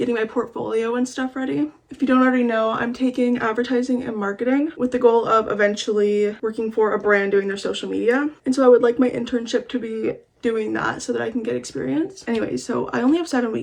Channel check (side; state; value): both; identical; correlation 1.00